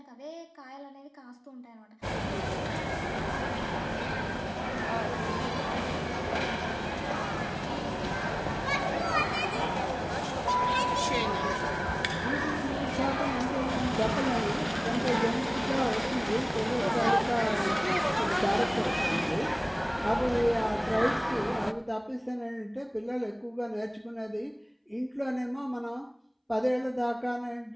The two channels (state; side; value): identical; both; correlation 1.00